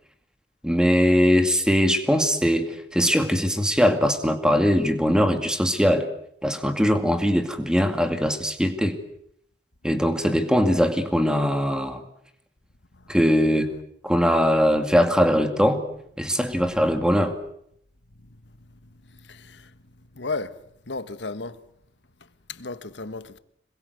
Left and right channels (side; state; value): both; normal; correlation 0.85